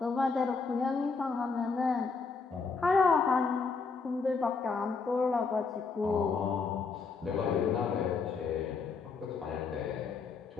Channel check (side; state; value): right; quieter; 4.8 dB